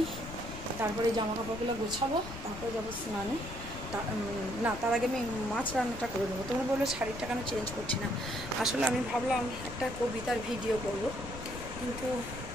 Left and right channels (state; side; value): noise; left; rumble, 10 dB below the sound